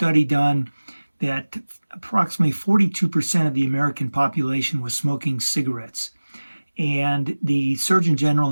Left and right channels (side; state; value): both; inverted; correlation -1.00